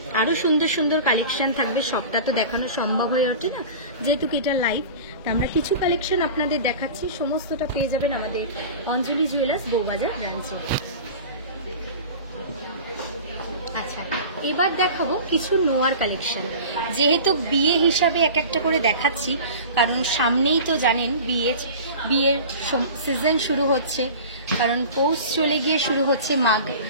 আরো সুন্দর সুন্দর কালেকশন থাকবে, সবটা তো দেখানো সম্ভব হয়ে ওঠে না, যেহেতু এটা লাইভ। তা আমরা কিছু কালেকশন আপনাদের দেখাচ্ছি, সমস্তটা পেয়ে যাবেন আমাদের অঞ্জলি জুয়েলার্স বউবাজার ব্রাঞ্চে। আচ্ছা, এবার দেখাবো কিছু নোয়ার কালেকশন। যেহেতু বিয়ে হিসাবে এক একটা করে দেখাচ্ছি, কারণ সামনেই তো জানেন বিয়ের সিজন শুরু হচ্ছে, কারণ পৌষ চলে গিয়ে শুরু হচ্ছে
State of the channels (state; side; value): inverted; both; correlation -0.37